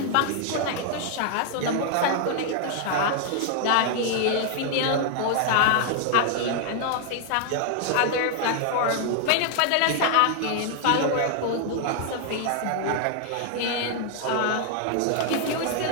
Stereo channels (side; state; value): both; different; correlation 0.00